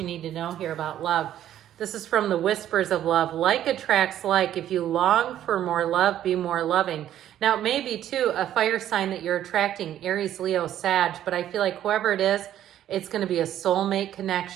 need to know here about love. This is from the Whispers of Love. Like attracts like. If you long for more love, be more loving. Now, it may be too a fire sign that you're attracting, Aries, Leo, Sag, but I feel like whoever it is, it's going to be a soulmate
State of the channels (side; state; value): left; quieter; 11.6 dB